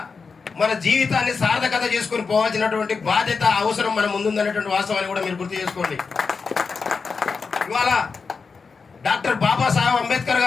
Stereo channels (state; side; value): quieter; right; 5.0 dB